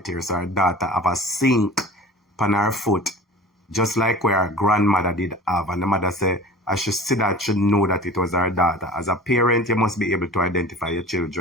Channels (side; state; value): both; normal; correlation 0.40